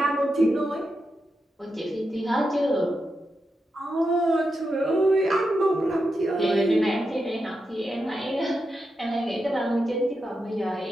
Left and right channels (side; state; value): both; normal; correlation 0.87